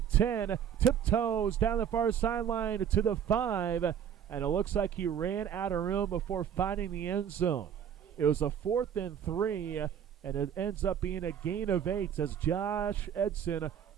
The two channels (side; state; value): left; quieter; 8.7 dB